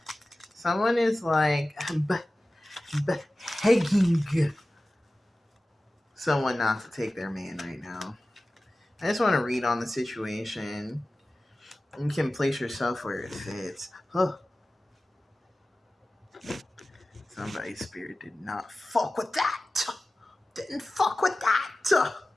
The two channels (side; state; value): both; normal; correlation 0.96